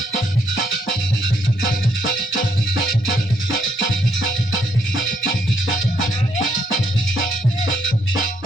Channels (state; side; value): normal; both; correlation 0.73